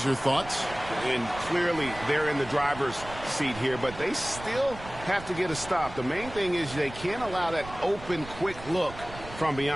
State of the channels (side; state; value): right; noise; rumble, 14 dB below the sound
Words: your thoughts? And clearly they're in the driver's seat here, but they still have to get a stop. The main thing is they can't allow that open, quick look from